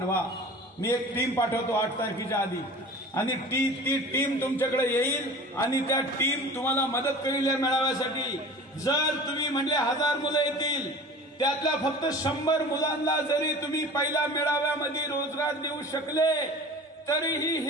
मी एक टीम पाठवतो 8 तारखेच्या आधी, आणि ती टीम तुमच्याकडे येईल आणि त्या टीम तुम्हाला मदत करेल या मेळाव्यासाठी. जर तुम्ही म्हणले 1000 मुलं येतील, त्यातल्या फक्त 100 मुलांना जरी तुम्ही पहिल्या मेळाव्यामध्ये रोजगार देऊ शकले तरीही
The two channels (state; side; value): normal; both; correlation 0.40